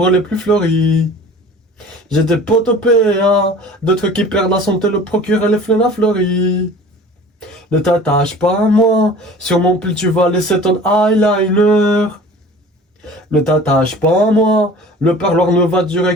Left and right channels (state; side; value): normal; both; correlation 0.43